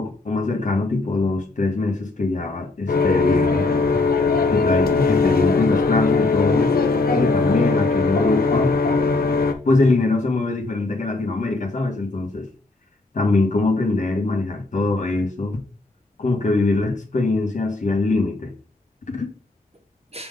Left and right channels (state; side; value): quieter; right; 3.1 dB